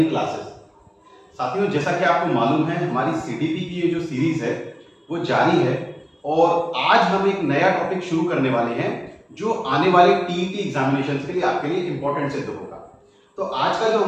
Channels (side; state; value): both; identical; correlation 1.00